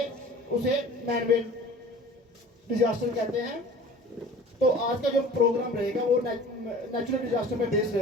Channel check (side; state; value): both; normal; correlation 0.44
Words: उसे मैन मेड डिजास्टर कहते हैं। तो आज का जो प्रोग्राम रहेगा वो नेचुरल डिजास्टर पे बेस्ड